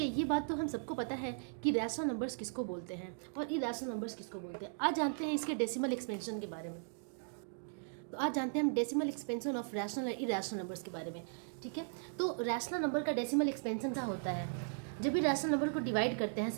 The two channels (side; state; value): left; silent; digital silence